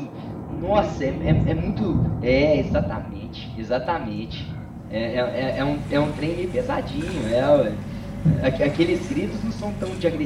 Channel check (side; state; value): both; identical; correlation 1.00